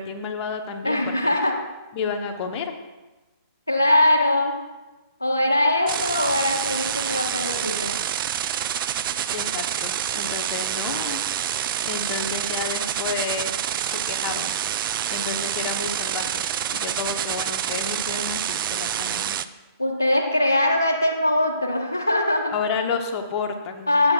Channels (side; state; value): both; inverted; correlation -0.55